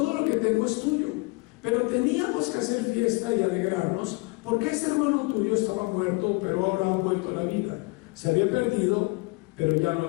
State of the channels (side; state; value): right; quieter; 26.9 dB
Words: lo que tengo es tuyo. Pero teníamos que hacer fiesta y alegrarnos, porque ese hermano tuyo estaba muerto, pero ahora ha vuelto a la vida. Se había perdido, pero ya lo